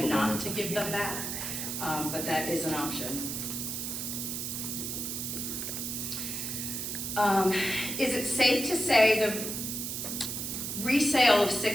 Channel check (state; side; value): noise; right; hiss, 4 dB below the sound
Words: not to give them back, but that is an option. Is it safe to say the resale of